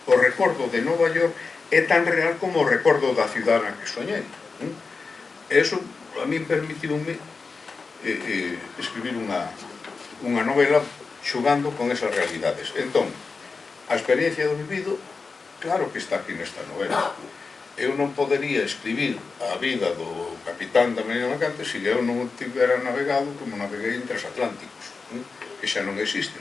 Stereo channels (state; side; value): quieter; right; 4.5 dB